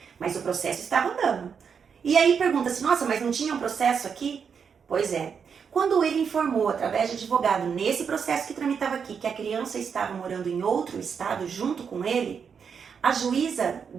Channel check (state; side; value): quieter; left; 6.6 dB